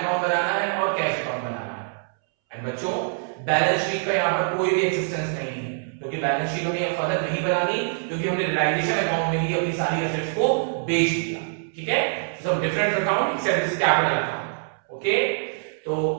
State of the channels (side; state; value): left; silent; 62 dB below the other